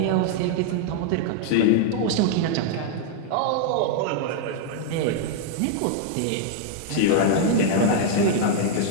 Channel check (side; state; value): both; different; correlation -0.01